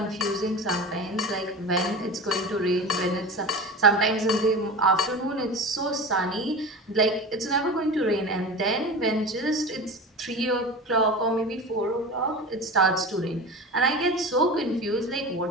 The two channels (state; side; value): normal; both; correlation 0.30